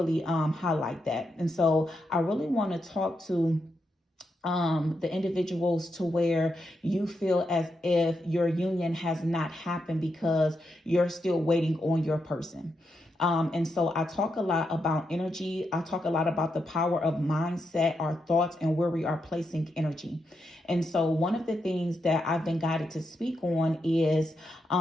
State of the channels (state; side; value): normal; both; correlation 0.83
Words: highlight that. And so I really want to talk to the individuals to where you feel as if your union has not happened because you're still waiting on your person. And so I talk a lot about energy. I talk a lot about the power of mindset, our thoughts, and where we are placing energy. And so one of the things that I've been guided to speak on is